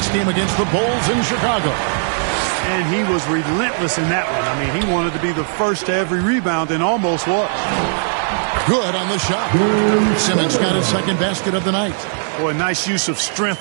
game against the Bulls in Chicago. And he was relentless in that one. I mean, he wanted to be the first to every rebound and almost was. Good on the shot. Simmons got his second basket of the night. Boy, nice use of strength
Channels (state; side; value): silent; left; 62 dB below the other